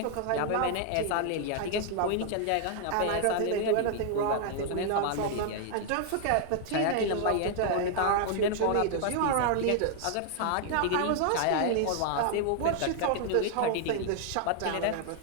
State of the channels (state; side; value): different; both; correlation 0.00